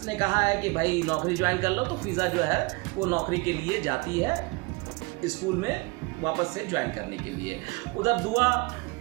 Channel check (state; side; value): quieter; left; 26.3 dB